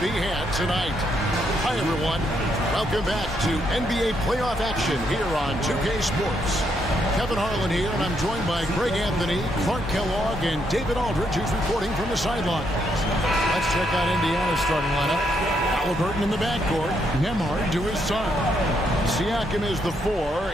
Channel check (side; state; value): both; normal; correlation 0.76